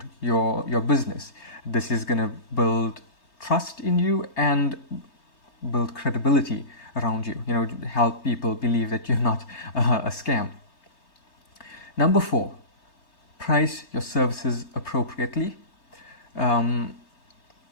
your business. This is going to build trust in you and build credibility around you, help people believe that you're not a scam. Number 4, price your services appropriately.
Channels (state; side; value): late; right; 4.4 ms